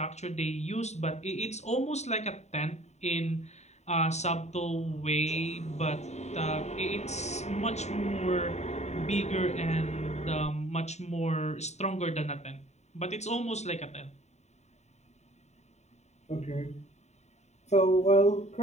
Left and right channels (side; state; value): right; late; 0.32 ms